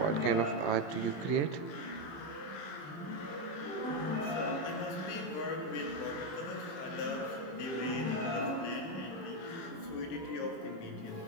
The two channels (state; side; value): late; right; 20 ms